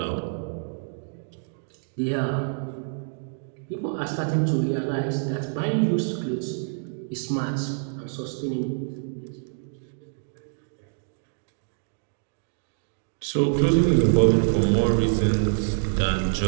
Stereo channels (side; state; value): left; silent; digital silence